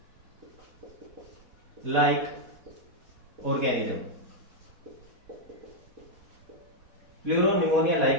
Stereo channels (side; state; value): left; late; 4.1 ms